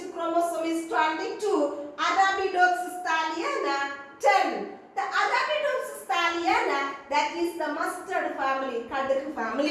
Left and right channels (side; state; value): both; identical; correlation 1.00